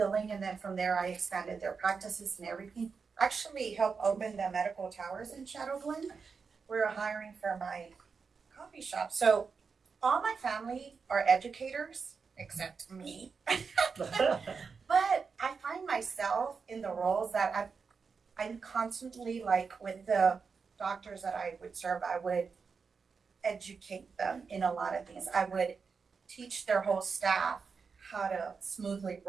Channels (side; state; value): left; quieter; 5.3 dB